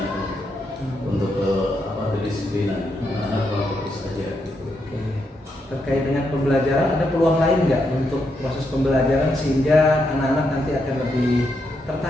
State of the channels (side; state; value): both; normal; correlation 0.81